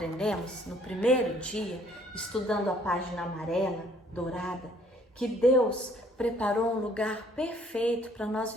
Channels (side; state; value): both; normal; correlation 0.61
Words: no primeiro dia, estudando a página amarela, dourada, que Deus preparou um lugar perfeito para nós